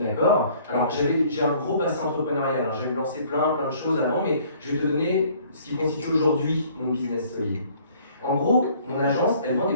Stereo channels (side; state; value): both; inverted; correlation -0.57